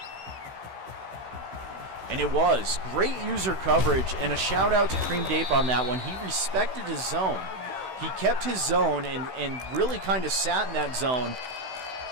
And it was great user coverage, and a shout out to Cream Dape on that one. He respected his zone. He kept his zone and really kind of sat in that zone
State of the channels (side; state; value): left; late; 16 ms